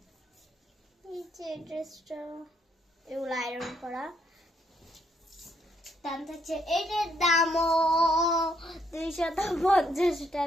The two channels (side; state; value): both; normal; correlation 0.72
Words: ড্রেসটা এগুলো আয়রন করা দাম থাকছে, এটার দামও 250